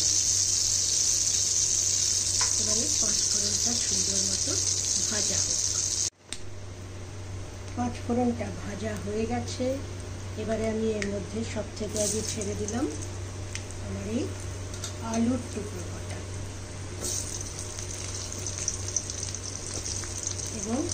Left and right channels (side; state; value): both; identical; correlation 1.00